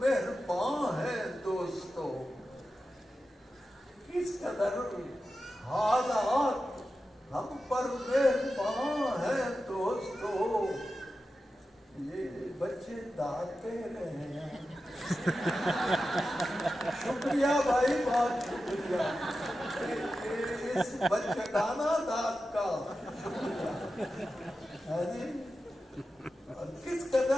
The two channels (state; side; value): normal; both; correlation 0.92